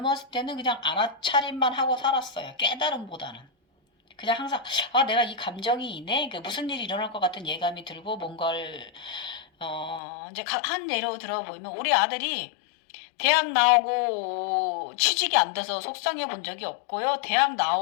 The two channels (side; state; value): right; drops out; at 10.0 s